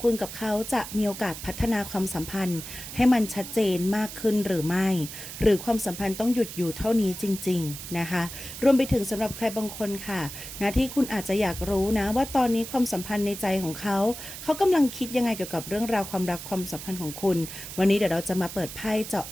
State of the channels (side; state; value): right; noise; hiss, 10 dB below the sound